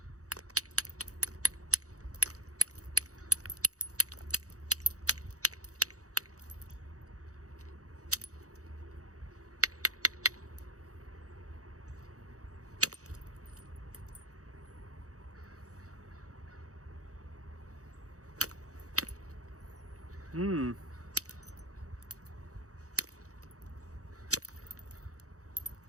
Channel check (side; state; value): left; late; 0.66 ms